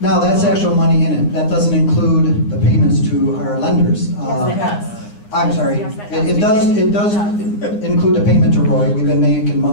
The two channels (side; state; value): right; late; 9.8 ms